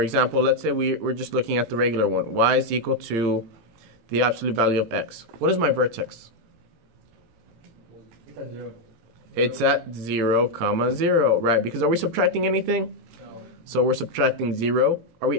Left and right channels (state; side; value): late; left; 18 ms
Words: example, let's say we're just looking at the regular one. Y is equal to the absolute value of x. What is my vertex? It's at 0. It's at 0, comma, 0. Right, because are we subtracting anything? No. So we're subtracting 0. Are